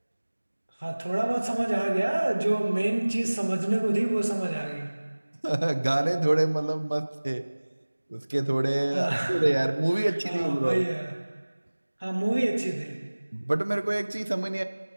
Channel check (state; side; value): inverted; both; correlation -1.00